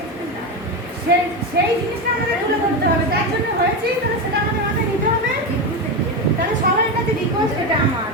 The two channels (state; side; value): normal; both; correlation 0.15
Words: সেই জিনিসটা আমাদের তুলে ধরতে হবে, তার জন্য হয়েছে, তাহলে সেটা আমাদের মাথায় নিতে হবে। তাহলে সবার কাছে রিকোয়েস্ট এটা আমার,